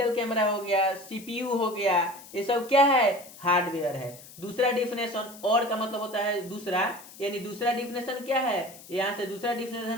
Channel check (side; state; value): left; noise; hiss, 18 dB below the sound